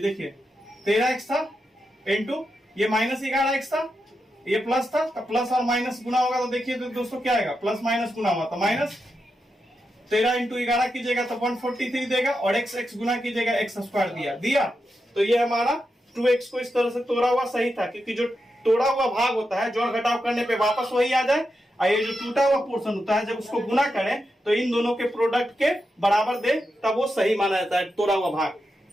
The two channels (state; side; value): normal; both; correlation 0.87